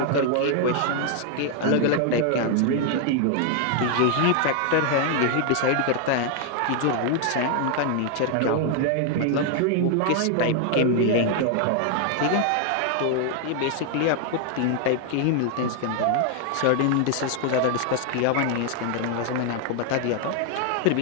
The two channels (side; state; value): both; different; correlation 0.00